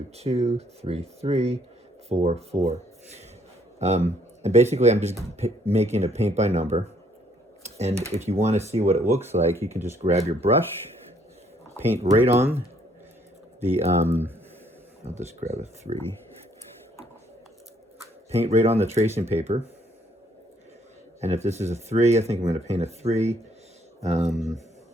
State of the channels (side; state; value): both; normal; correlation 0.66